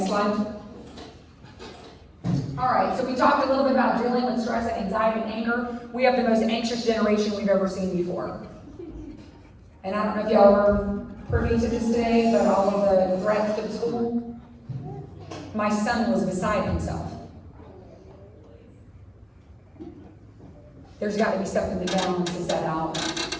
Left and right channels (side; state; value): both; identical; correlation 1.00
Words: slide. All right, so we talked a little bit about dealing with stress and anxiety and anger. We have the most anxious generation we've ever seen before. And I don't know if y'all were privy to this today, but all of the threats to the school, my son was beside himself. There's got to be something that balances that out.